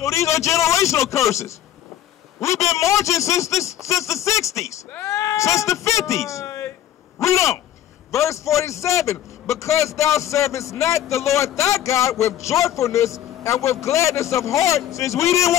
these are generational curses. We've been marching since the 60s, since the 50s. Read on. Verse 47. Because thou servest not the Lord thy God with joyfulness and with gladness of heart. Since we didn't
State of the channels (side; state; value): right; quieter; 11.8 dB